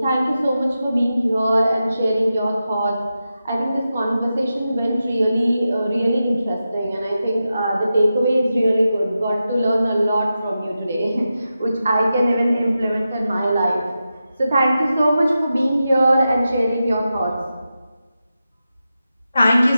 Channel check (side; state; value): both; inverted; correlation -0.91